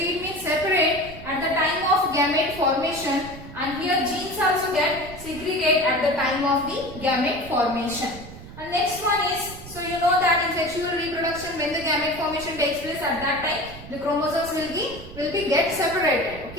means separate at the time of gamete formation, and here genes also get segregate at the time of the gamete formation. And next one is, so you know that in sexual reproduction when the gamete formation takes place, at that time the chromosomes will be get separated.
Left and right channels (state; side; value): noise; right; rumble, 15 dB below the sound